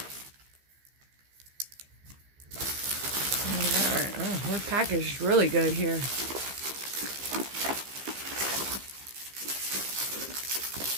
Oh, we're packaged really good here. Let's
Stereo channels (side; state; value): left; late; 15 ms